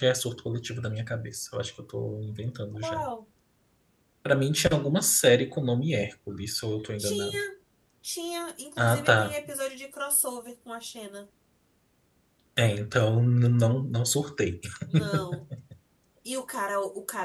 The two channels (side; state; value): both; identical; correlation 1.00